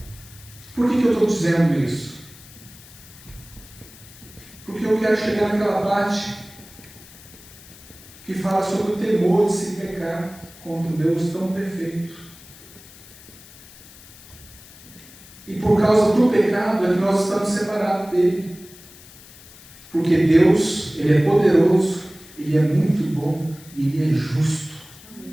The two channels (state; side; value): noise; left; hiss, 21 dB below the sound